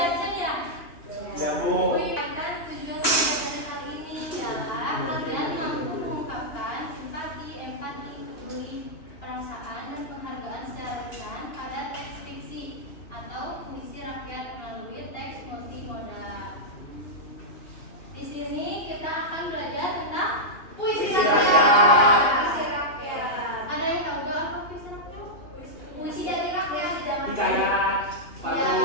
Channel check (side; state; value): right; late; 2.9 ms